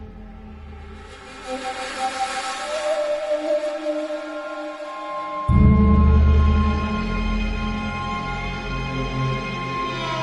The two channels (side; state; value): both; identical; correlation 1.00